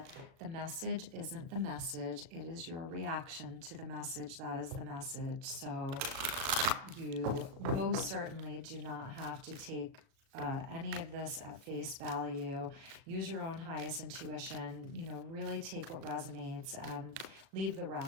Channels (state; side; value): late; left; 37 ms